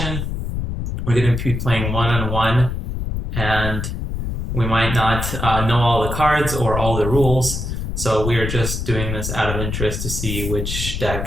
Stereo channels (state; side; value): noise; left; rumble, 3 dB below the sound